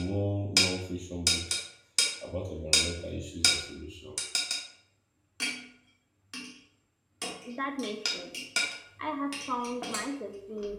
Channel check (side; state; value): both; identical; correlation 1.00